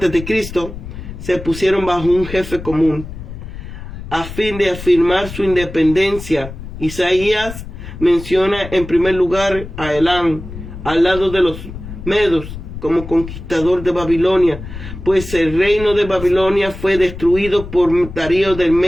se pusieron bajo un jefe común, a fin de afirmar su independencia. Isaías menciona en primer lugar a Elam, al lado de los medos, como conquistador de Babilonia, pues el reino de Babilonia fue destruido por Darío del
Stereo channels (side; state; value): left; noise; rumble, 11 dB below the sound